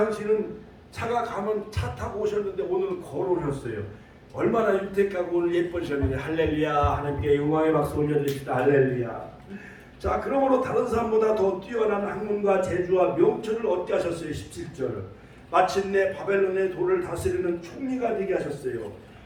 차가 가면 차 타고 오셨는데 오늘은 걸어오셨어요. 얼마나 윤택하고 오늘 예쁘셨는데 할렐루야. 하나님께 영광의 박수 올려드립시다. 할렐루야. 자, 그러므로 다른 사람보다 더 뛰어난 학문과 재주와 명철을 얻게 하셨어요. 17절 마침내 바벨론의 도를 다스리는 총리가 되게 하셨어요.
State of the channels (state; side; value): identical; both; correlation 1.00